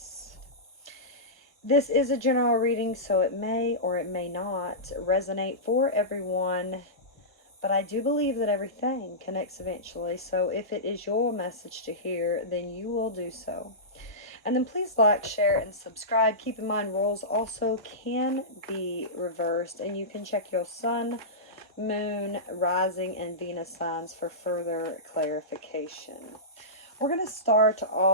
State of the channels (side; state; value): both; normal; correlation -0.17